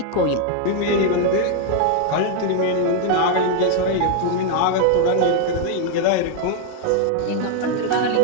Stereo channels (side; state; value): both; different; correlation 0.00